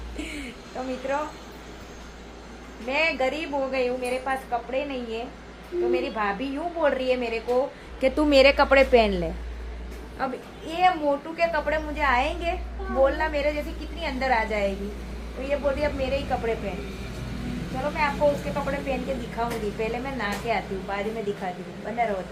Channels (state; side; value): identical; both; correlation 1.00